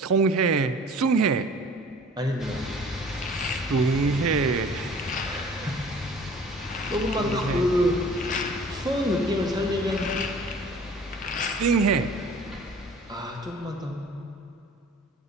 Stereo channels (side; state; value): both; normal; correlation 0.48